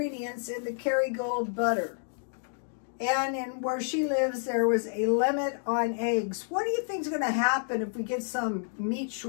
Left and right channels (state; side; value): silent; right; digital silence